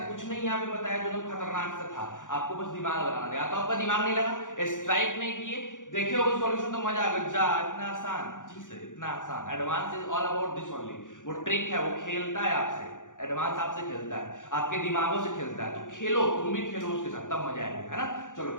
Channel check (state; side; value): late; right; 0.87 ms